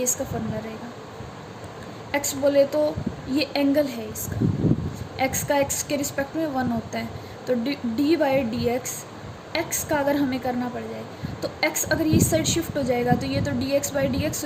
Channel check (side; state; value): both; identical; correlation 1.00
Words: इसका फॉर्मूला रहेगा। x बोले तो ये एंगल है इसका, x का x के रिस्पेक्ट में 1 होता है। तो dy/dx x का अगर हमें करना पड़ जाए तो x अगर ये साइड शिफ्ट हो जाएगा तो ये तो dx/dx